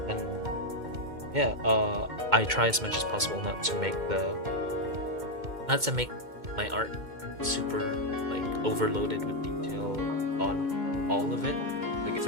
and yeah, I try as much as possible not to make my art super like overloaded with detail on all of it. Like if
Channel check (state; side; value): late; left; 2.1 ms